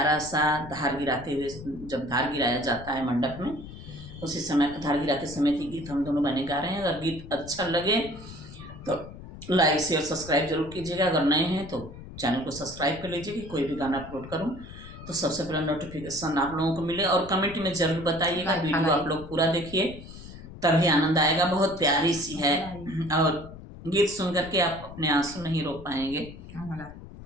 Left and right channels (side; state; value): left; noise; rumble, 14 dB below the sound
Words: सा धार गिराते हुए, जब धार गिराया जाता है मंडप में, उसी समय धार गिराते समय की गीत हम दोनों बहनें गा रहे हैं। अगर गीत अच्छा लगे तो लाइक शेयर सब्सक्राइब जरूर कीजिएगा। अगर नए हैं तो चैनल को सब्सक्राइब कर लीजिए कि कोई भी गाना अपलोड करूँ तो सबसे पहले नोटिफिकेशन आप लोगों को मिले। और कमेंट में जरूर बताइएगा, वीडियो आप लोग पूरा देखिए, तभी आनंद आएगा। बहुत प्यारी सी है और गीत सुन करके आप अपने आंसू नहीं रोक पाएंगे।